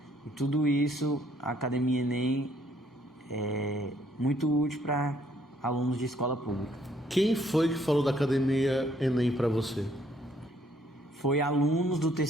e tudo isso a Academia Enem é muito útil para alunos de escola pública. Quem foi que falou da Academia Enem para você? Foi alunos do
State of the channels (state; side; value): normal; both; correlation 0.66